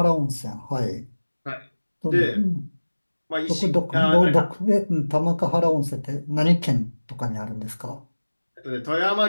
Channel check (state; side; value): inverted; both; correlation -1.00